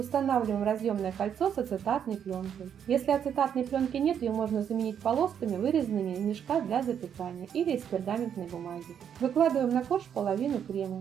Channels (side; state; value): left; quieter; 8.5 dB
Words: разъемное кольцо с ацетатной пленкой. Если ацетатной пленки нет, ее можно заменить полосками, вырезанными из мешка для запекания или из пергаментной бумаги. Выкладываем на корж половину